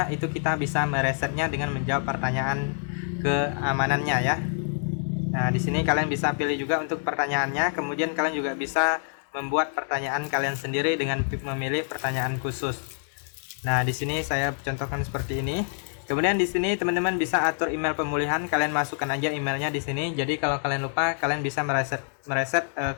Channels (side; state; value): right; silent; digital silence